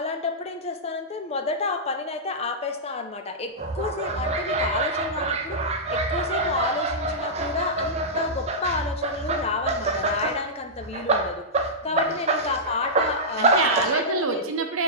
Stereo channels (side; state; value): both; normal; correlation -0.13